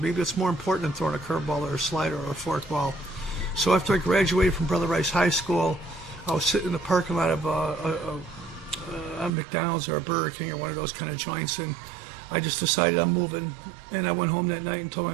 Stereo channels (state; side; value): drops out; left; at 9.3 s